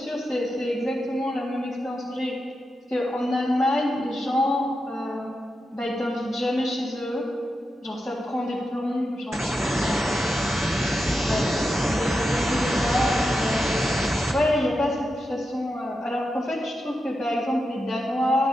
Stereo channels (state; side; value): normal; both; correlation 0.88